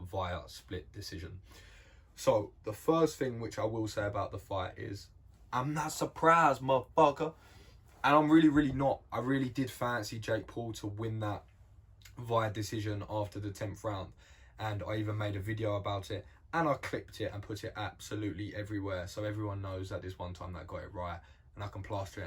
via split decision. So, the first thing which I will say about the fight is, I'm not surprised, motherfucker. And I'm really not. I really did fancy Jake Paul to win that via decision after the 10th round. And I even made a video about it, and I clipped it and put it absolutely everywhere, so everyone knows that this one time that I got it right, and I can plaster it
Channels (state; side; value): identical; both; correlation 1.00